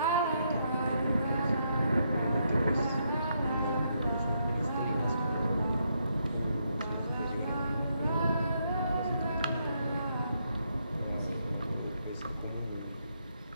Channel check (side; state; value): both; inverted; correlation -0.78